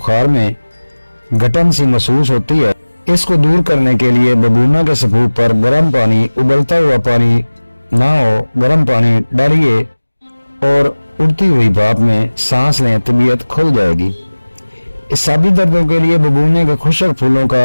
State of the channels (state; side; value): inverted; both; correlation -1.00